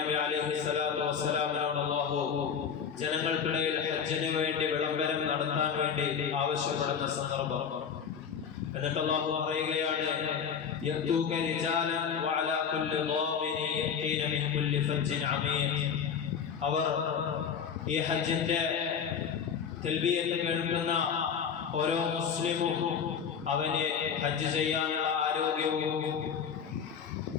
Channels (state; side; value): quieter; right; 7.1 dB